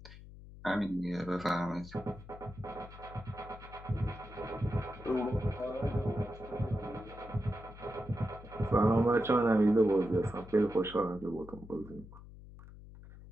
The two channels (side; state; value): left; noise; hum, 16 dB below the sound